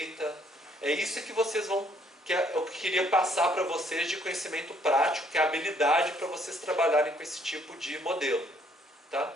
É isso que vocês vão... que eu queria passar para vocês de conhecimento prático, que é a habilidade para vocês trabalharem com esse tipo de modelo. Tá?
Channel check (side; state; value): both; normal; correlation 0.65